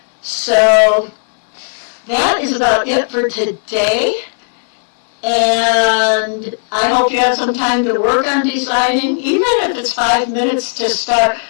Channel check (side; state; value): right; silent; digital silence